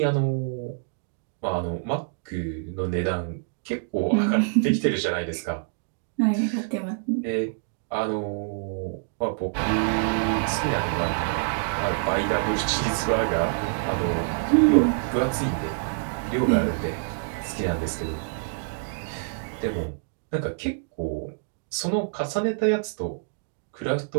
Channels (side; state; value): left; silent; digital silence